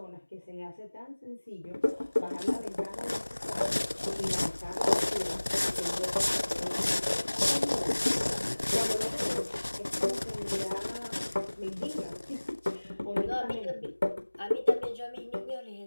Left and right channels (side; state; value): both; inverted; correlation -1.00